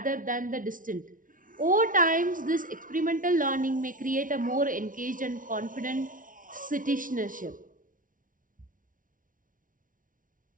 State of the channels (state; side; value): late; left; 0.39 ms